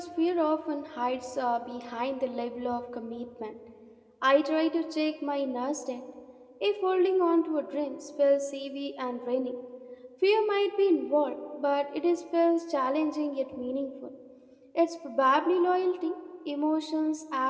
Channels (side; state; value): both; identical; correlation 1.00